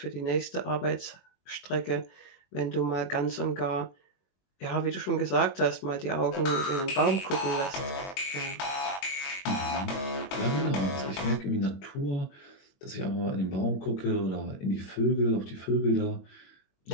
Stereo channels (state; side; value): late; right; 21 ms